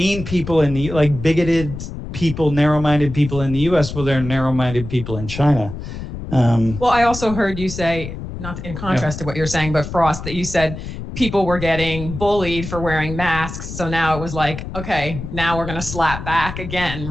people in the, like bigoted people, narrow-minded people in the US. Well, there are narrow-minded people in China. Well, I also heard you say, not in contrast to what you're saying, but Frost, that you said people were getting bullied for wearing masks. So now it was like, okay, now we're going to slap back again,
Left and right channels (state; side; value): noise; left; rumble, 9 dB below the sound